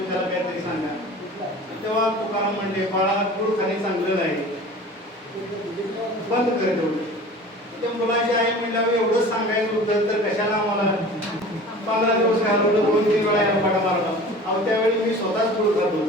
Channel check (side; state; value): both; normal; correlation 0.41